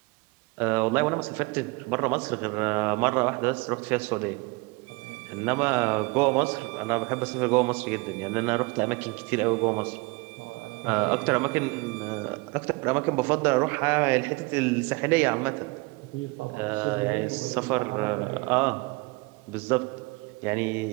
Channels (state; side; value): quieter; left; 26.4 dB